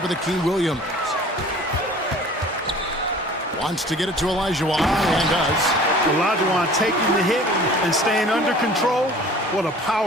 of the key, Williams. Wants to get it to Olajuwon, and does. Olajuwon taking the hit and staying under control. What a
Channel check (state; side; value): normal; both; correlation 0.47